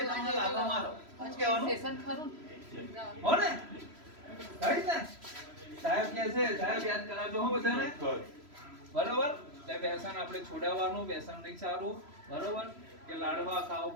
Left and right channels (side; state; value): left; late; 3.0 ms